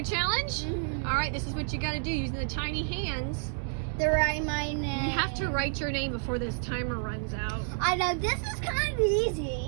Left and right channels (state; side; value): silent; left; digital silence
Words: challenge? All right, this is what you got to do using the tiny hands. To write my name. You have to write your name before this timer runs out. I know, this is kind of